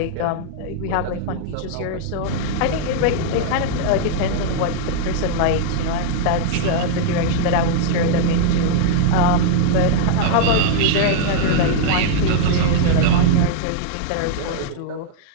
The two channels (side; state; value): both; different; correlation -0.01